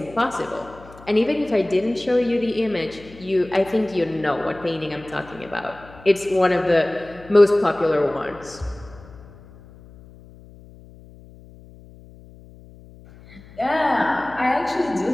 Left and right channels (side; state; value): left; noise; hum, 21 dB below the sound